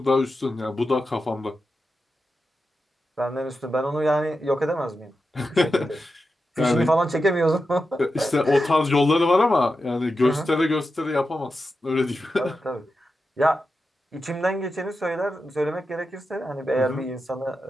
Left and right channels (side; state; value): both; normal; correlation 0.90